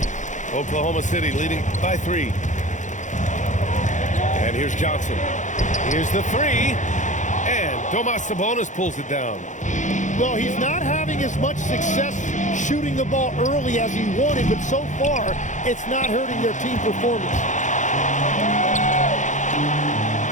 Oklahoma City leading by 3. And here's Johnson. Here's the 3. And Domas Sabonis pulls it down. Well, he's not having as much success shooting the ball early as he wanted, but so far, it's not hurting their team performance.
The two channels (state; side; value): late; right; 0.36 ms